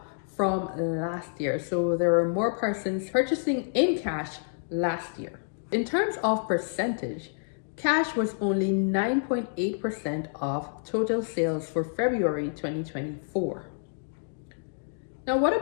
from last year. So there were more persons purchasing in cash last year. In terms of percentage, cash was only 9.8% of total sales for February 2024. Now, what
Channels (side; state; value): right; silent; digital silence